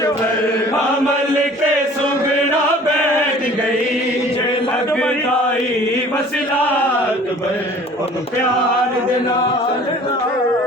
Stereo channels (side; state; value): both; normal; correlation 0.49